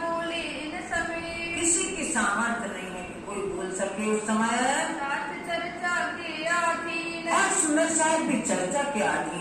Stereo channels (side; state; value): both; identical; correlation 1.00